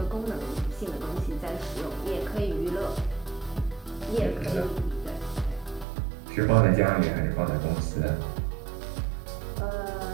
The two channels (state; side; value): drops out; left; at 5.9 s